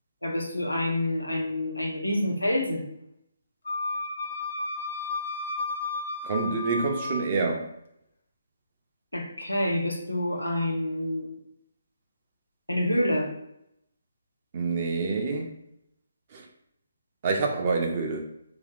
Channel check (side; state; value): both; inverted; correlation -0.74